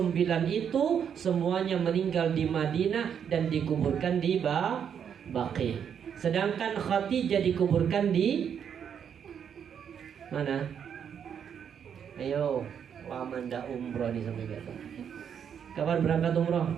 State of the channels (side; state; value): left; quieter; 8.0 dB